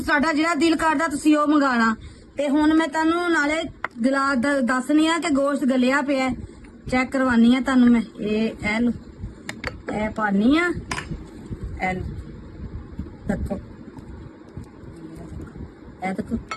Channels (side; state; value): both; identical; correlation 1.00